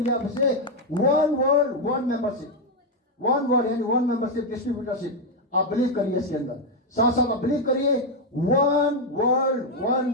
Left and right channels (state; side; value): normal; both; correlation 0.02